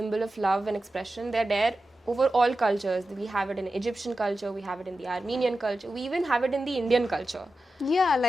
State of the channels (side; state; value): both; normal; correlation 0.92